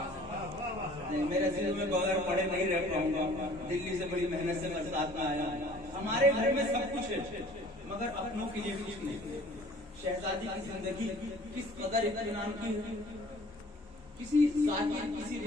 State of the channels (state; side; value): normal; both; correlation 0.51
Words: میرے ذہن میں بغیر پڑھے نہیں رہ پاؤں گا. دلی سے بڑی محنت سے برسات میں آیا. ہمارے گھر میں سب کچھ ہے مگر اپنوں کے لیے کچھ نہیں. شہزادی کی زندگی کس قدر اطمینان کی ہے. کسی ذاکر کسی